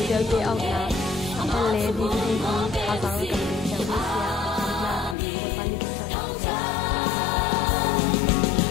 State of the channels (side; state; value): right; drops out; at 5.2 s